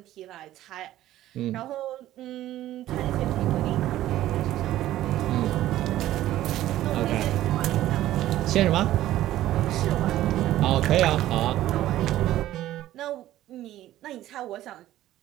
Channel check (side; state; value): left; quieter; 14.0 dB